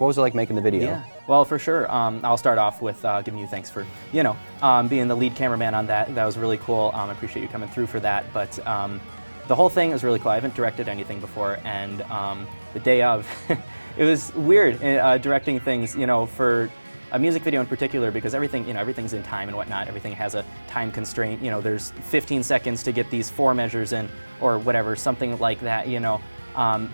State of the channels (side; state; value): both; inverted; correlation -1.00